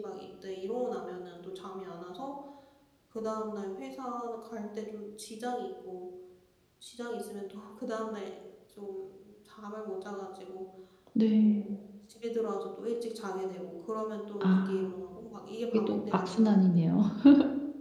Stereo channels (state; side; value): identical; both; correlation 1.00